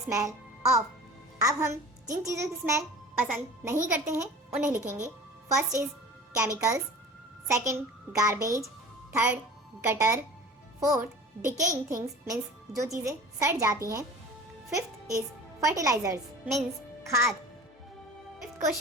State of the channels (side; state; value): both; normal; correlation 0.41